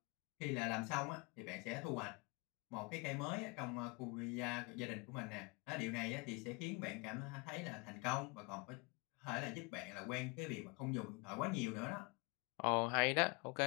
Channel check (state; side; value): quieter; right; 28.3 dB